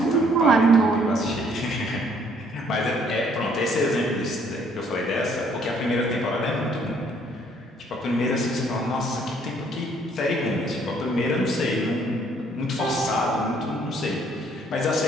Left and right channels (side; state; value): both; normal; correlation 0.64